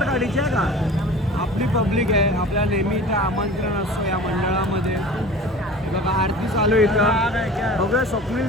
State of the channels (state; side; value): normal; both; correlation 0.40